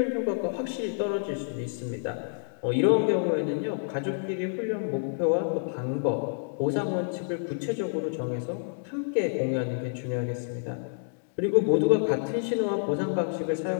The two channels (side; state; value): right; silent; digital silence